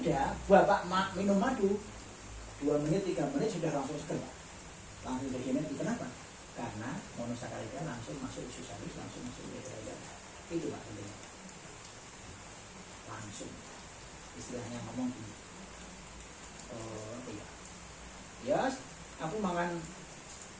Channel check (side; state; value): both; identical; correlation 1.00